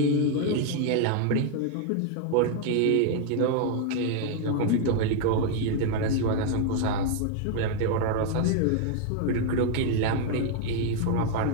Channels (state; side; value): different; both; correlation 0.00